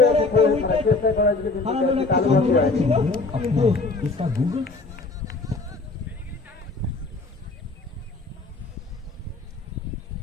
একটা wicket চেষ্টা করা যদি হারানোর একটা সম্ভাবনা ছিল, কিন্তু इसका गूगल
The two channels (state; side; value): quieter; right; 3.6 dB